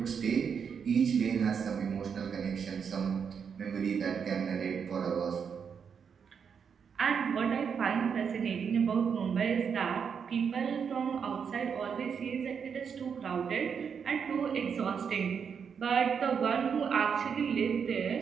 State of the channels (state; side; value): quieter; left; 6.7 dB